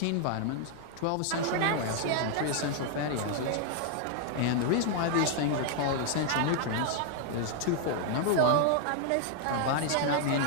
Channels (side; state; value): both; different; correlation 0.00